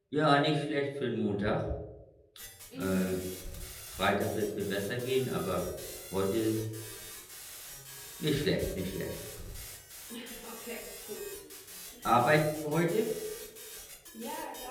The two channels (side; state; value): both; identical; correlation 1.00